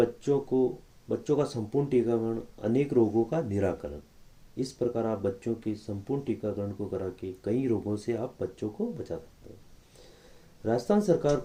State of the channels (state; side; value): identical; both; correlation 1.00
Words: का संपूर्ण टीकाकरण, अनेक रोगों का निराकरण। इस प्रकार आप बच्चों के संपूर्ण टीकाकरण को करा के कई रोगों से आप बच्चों को बचा सकते हैं। राजस्थान सरकार